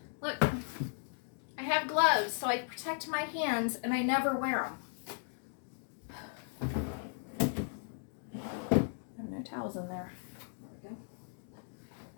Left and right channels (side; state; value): right; silent; 54 dB below the other